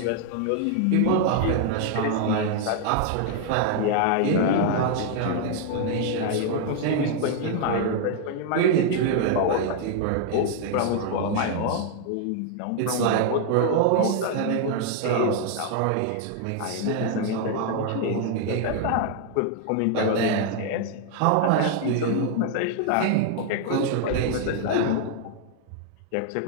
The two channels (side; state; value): both; different; correlation 0.00